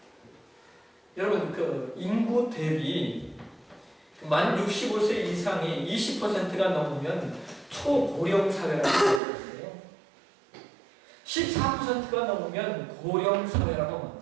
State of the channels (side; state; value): left; drops out; at 9.2 s